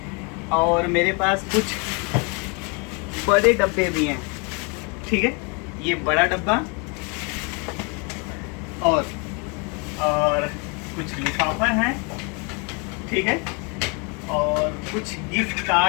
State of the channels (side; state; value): right; quieter; 32.1 dB